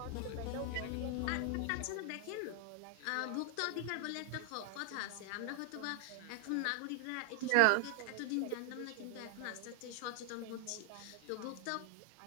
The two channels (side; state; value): both; different; correlation 0.00